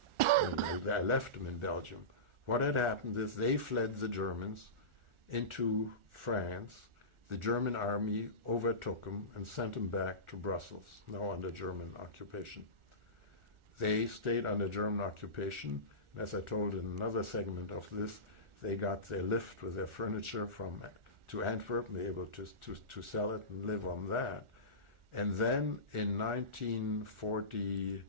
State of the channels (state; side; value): late; left; 1.4 ms